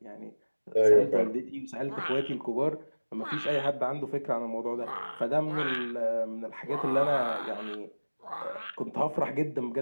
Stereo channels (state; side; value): inverted; both; correlation -1.00